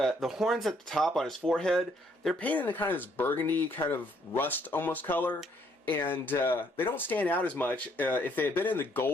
horns at the top on his forehead, they're painted in kind of this burgundy, kind of rust almost color, and they don't stand out as much. If they had been in the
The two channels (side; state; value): both; normal; correlation 0.68